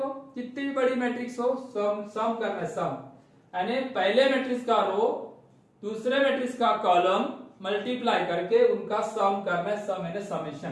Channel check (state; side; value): identical; both; correlation 1.00